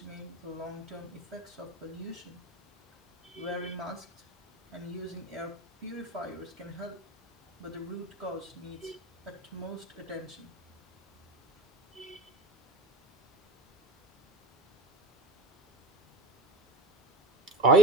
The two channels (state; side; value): normal; both; correlation 0.42